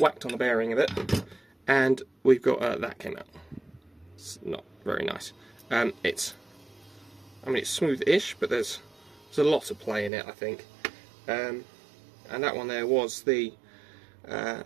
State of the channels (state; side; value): drops out; left; at 10.1 s